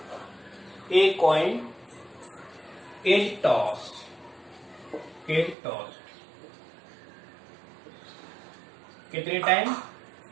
कॉइन इज टॉस कितने टाइम?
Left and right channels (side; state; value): left; drops out; at 5.6 s